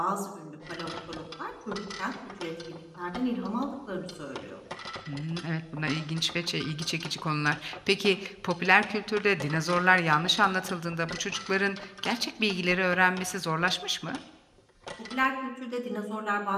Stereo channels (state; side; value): identical; both; correlation 1.00